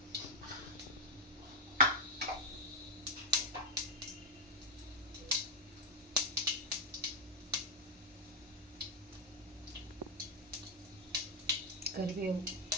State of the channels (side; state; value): both; normal; correlation 0.02